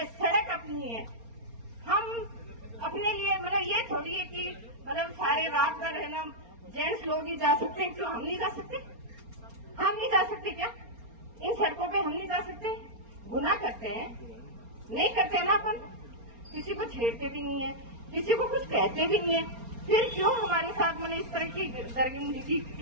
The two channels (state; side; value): late; left; 4.3 ms